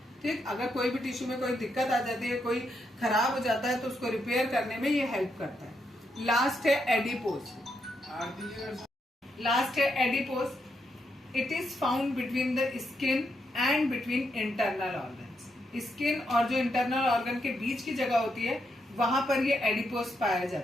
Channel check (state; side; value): normal; both; correlation 0.80